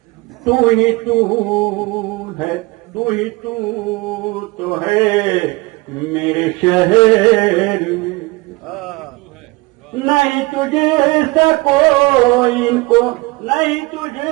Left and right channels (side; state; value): left; quieter; 23.2 dB